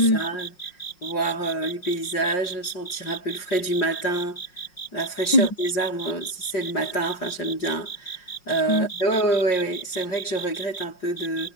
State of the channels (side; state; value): right; late; 5.5 ms